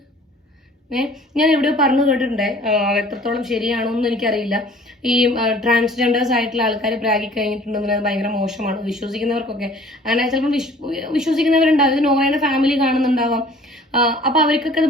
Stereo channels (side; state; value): both; normal; correlation 0.51